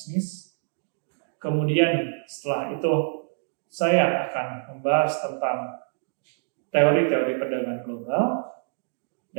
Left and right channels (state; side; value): silent; left; digital silence